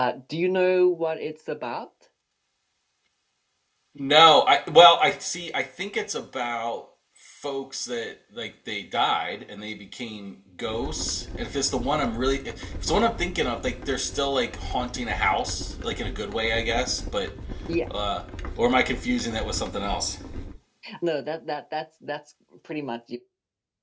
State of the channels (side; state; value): both; identical; correlation 1.00